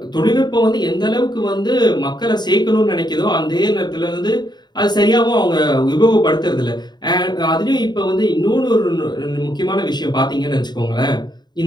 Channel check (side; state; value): right; late; 0.21 ms